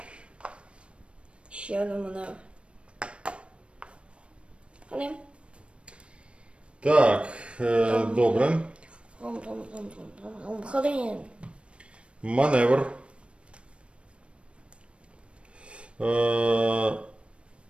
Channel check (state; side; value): late; left; 0.059 ms